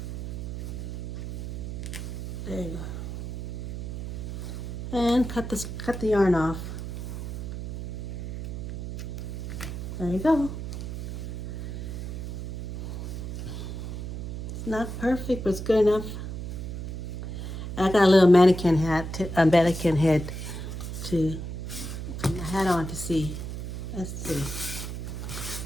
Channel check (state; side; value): noise; right; hum, 6 dB below the sound